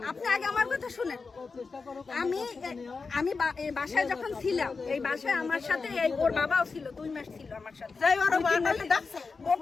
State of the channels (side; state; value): right; quieter; 4.5 dB